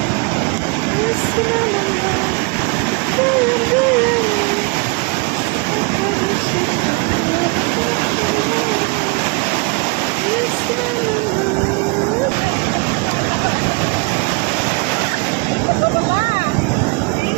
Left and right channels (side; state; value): left; quieter; 26.7 dB